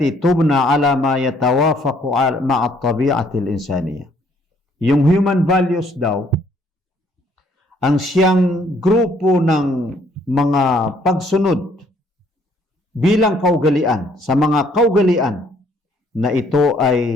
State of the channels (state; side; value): normal; both; correlation 0.64